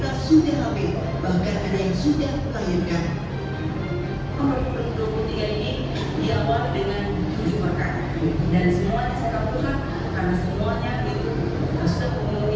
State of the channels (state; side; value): identical; both; correlation 1.00